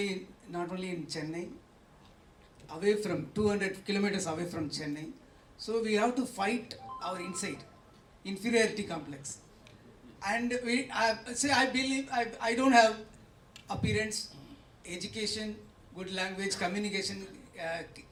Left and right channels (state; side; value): identical; both; correlation 1.00